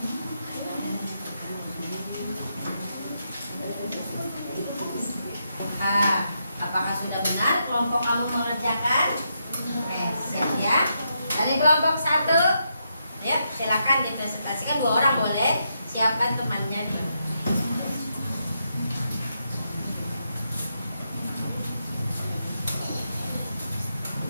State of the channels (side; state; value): both; inverted; correlation -0.81